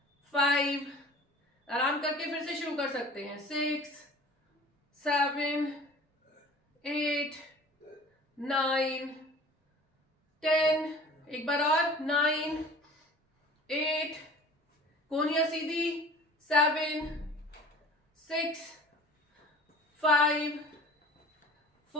5, आराम करके फिर से शुरू कर सकते हैं, 6 7 8 9 10। एक बार और, 9 8, कोहनियां सीधी, 7 6 5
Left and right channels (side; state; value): both; normal; correlation 0.44